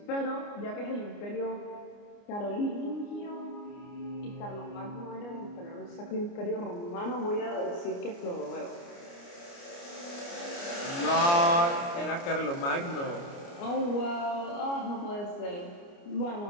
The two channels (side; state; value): right; late; 29 ms